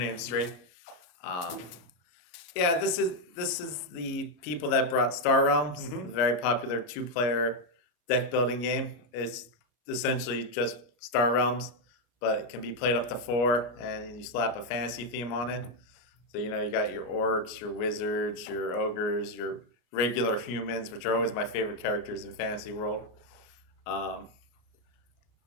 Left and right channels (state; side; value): late; right; 33 ms